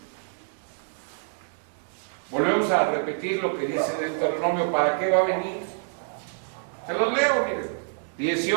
Volvemos a repetir lo que dice Deuteronomio, ¿para qué va a venir? Se los leo, miren.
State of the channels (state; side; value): silent; left; 60 dB below the other